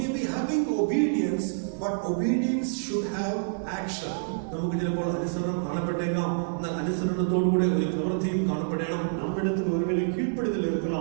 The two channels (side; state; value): left; silent; 59 dB below the other